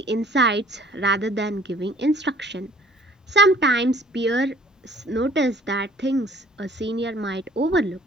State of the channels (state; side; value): normal; both; correlation 0.55